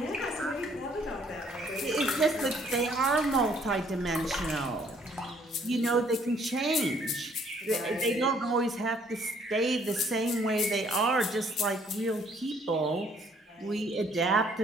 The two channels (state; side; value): normal; both; correlation 0.63